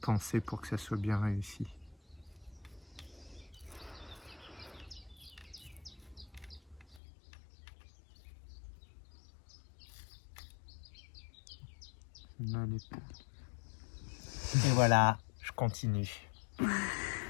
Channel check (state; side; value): drops out; right; at 7.0 s